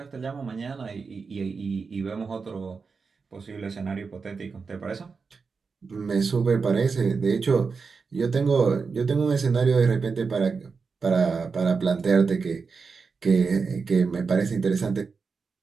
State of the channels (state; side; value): quieter; left; 5.0 dB